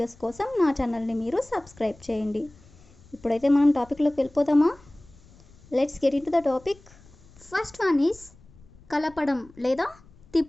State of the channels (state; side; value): noise; left; rumble, 25 dB below the sound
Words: కోసం నా ఛానల్ని మీరు సబ్స్క్రైబ్ చేయండి. ఇప్పుడైతే మనం టాపిక్లోకి వెళ్ళిపోదామా? Let's get in to the topic. First one is కలపడం లేదా